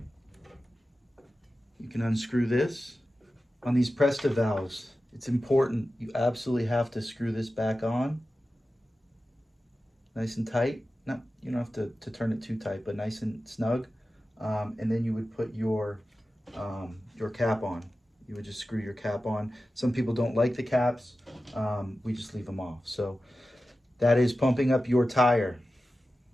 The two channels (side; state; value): both; normal; correlation 0.93